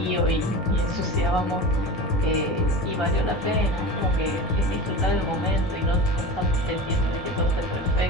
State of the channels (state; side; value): normal; both; correlation 0.31